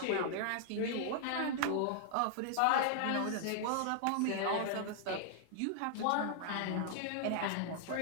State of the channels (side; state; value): both; different; correlation 0.00